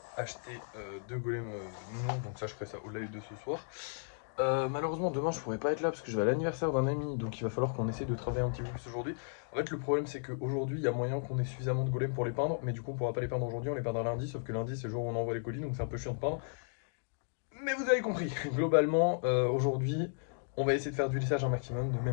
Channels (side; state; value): right; silent; digital silence